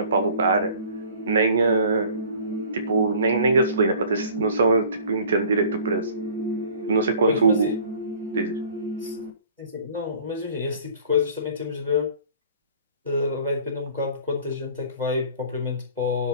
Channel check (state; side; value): inverted; both; correlation -0.49